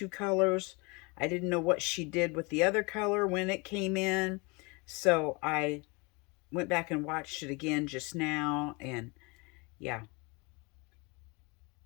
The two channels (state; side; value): quieter; right; 28.5 dB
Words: colors. I didn't know what she did with the other color when it came in. So I went back and watched it again just now, and yeah.